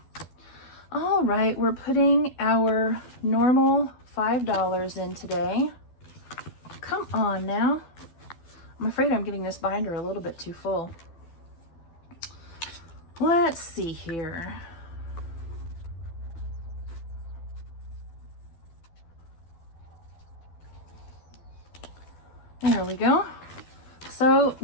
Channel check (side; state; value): right; late; 12 ms